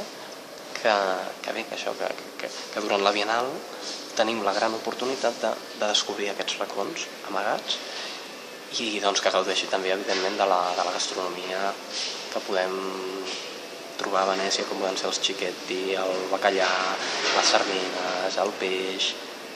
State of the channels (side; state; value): both; identical; correlation 1.00